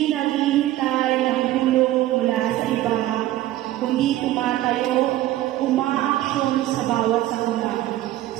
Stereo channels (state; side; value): quieter; left; 14.8 dB